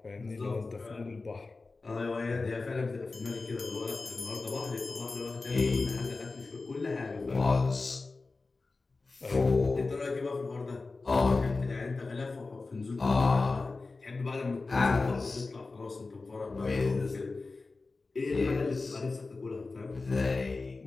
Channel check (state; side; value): quieter; right; 3.7 dB